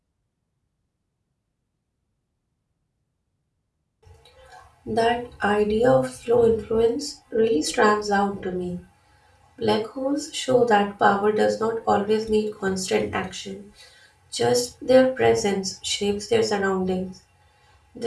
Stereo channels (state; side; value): identical; both; correlation 1.00